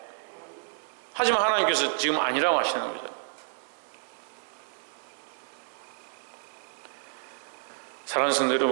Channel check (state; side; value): silent; left; digital silence